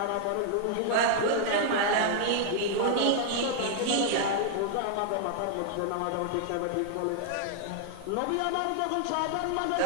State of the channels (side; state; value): both; different; correlation 0.00